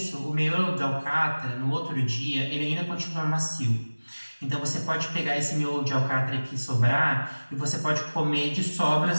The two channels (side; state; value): both; inverted; correlation -1.00